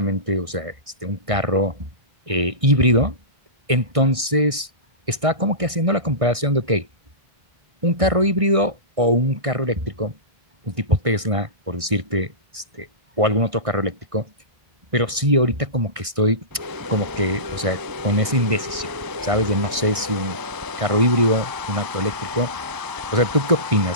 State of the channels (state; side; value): late; left; 1.6 ms